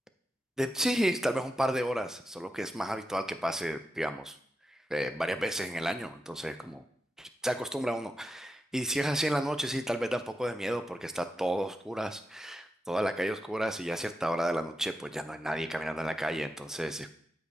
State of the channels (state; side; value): normal; both; correlation 0.88